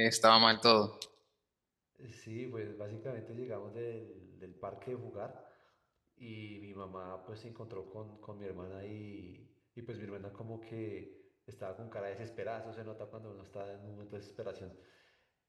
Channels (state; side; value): identical; both; correlation 1.00